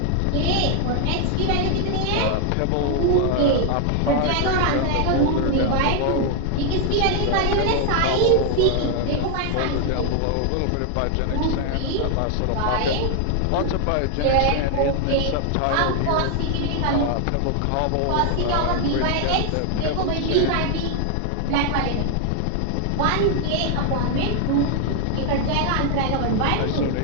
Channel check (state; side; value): different; both; correlation 0.00